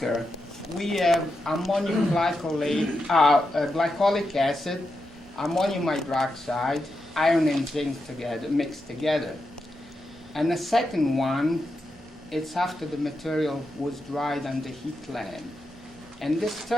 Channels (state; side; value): normal; both; correlation 0.86